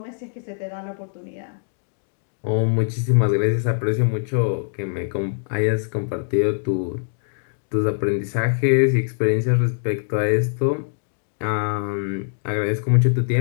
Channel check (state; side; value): silent; right; digital silence